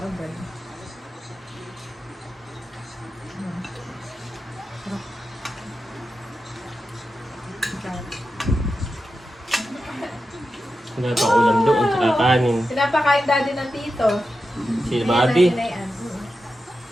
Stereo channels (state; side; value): normal; both; correlation 0.90